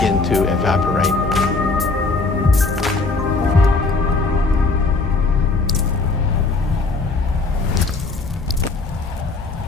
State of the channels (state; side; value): quieter; right; 3.8 dB